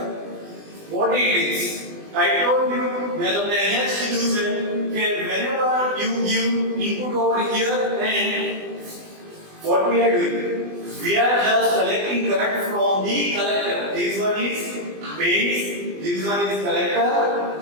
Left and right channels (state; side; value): late; left; 20 ms